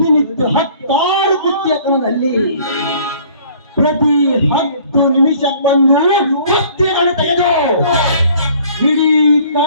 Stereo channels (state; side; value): inverted; both; correlation -0.54